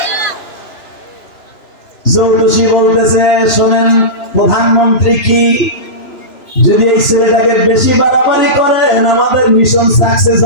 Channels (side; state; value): right; late; 2.9 ms